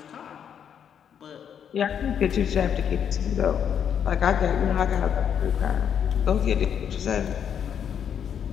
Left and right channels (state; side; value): quieter; right; 8.3 dB